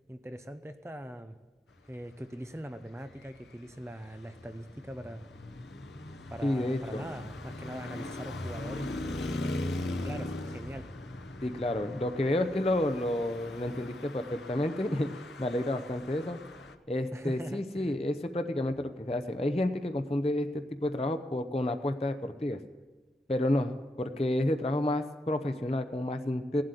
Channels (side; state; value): both; normal; correlation 0.81